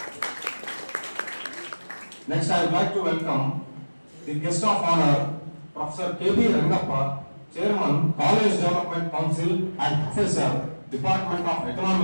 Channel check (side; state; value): both; inverted; correlation -1.00